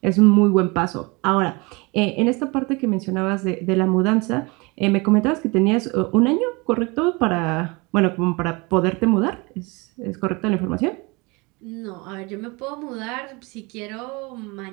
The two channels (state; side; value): quieter; left; 26.8 dB